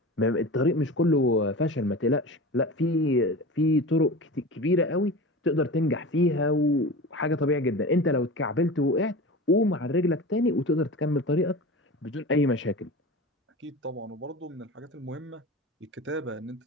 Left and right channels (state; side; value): normal; both; correlation 0.32